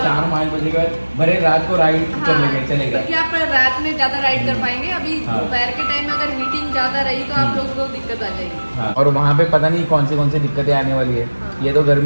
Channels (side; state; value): both; inverted; correlation -1.00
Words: 4-5 बजे के बाद भरे रात को राइड कर लेंगे, चलेगा। क्योंकि आप रात में ज्यादा राइड कर पाएंगे, अभी दोपहर के टाइम में अगर हीटिंग ज्यादा रही तो आप लोगों को दिक्कत आ जाएगी। और वहाँ पे पता नहीं कौन सी दिक्कतें आने वाली है। ये तो